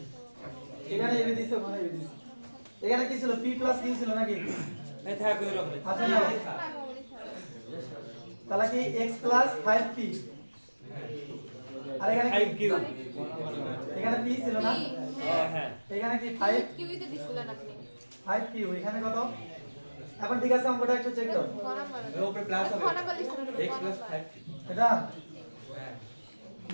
এখানে এবি দিছে ওখানে এবি দিছে এখানে কি ছিল p প্লাস q ছিল নাকি এই থাক কই রকম আচ্ছা না তাহলে কি x প্লাস 5p আর এখানে 5q এখানে p ছিল না হ্যাঁ এখানে কি 5 কিউই তো দিছিলেন আপনি 5p এখানে কত এখন ঠিক আছে অঙ্কটা একটু চেক করো এর উপরে প্লাস হবে x 5 এটা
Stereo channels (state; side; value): inverted; both; correlation -1.00